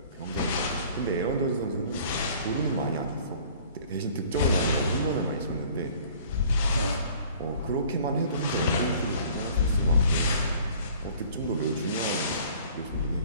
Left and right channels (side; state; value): both; inverted; correlation -0.51